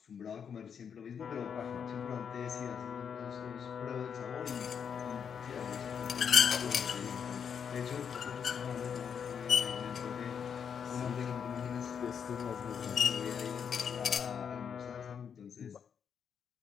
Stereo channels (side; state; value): right; quieter; 7.3 dB